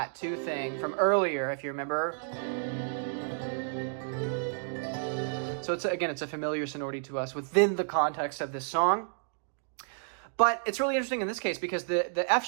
2 thing from earlier, if you remember. So it's a familiar sonority to us within the context of this song. But it's really interesting in this case because the F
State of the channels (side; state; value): left; silent; digital silence